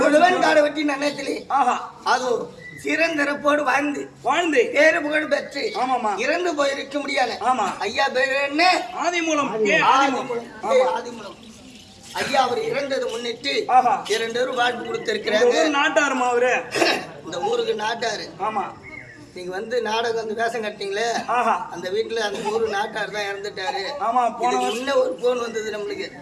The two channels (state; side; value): identical; both; correlation 1.00